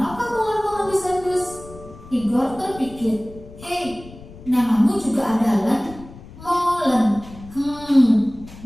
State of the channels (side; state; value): left; noise; rumble, 18 dB below the sound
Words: Molen mengendus-endus? Tigor terpikir. Hei, namamu juga ada Len? Molen.